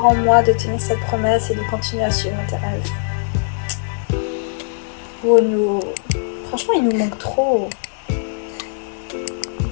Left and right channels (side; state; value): right; silent; 64 dB below the other